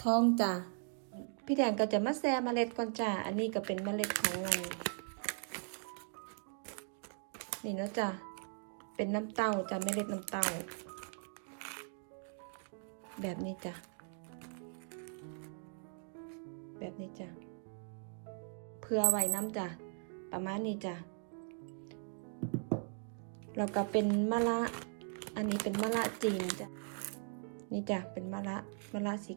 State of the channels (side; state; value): left; silent; 52 dB below the other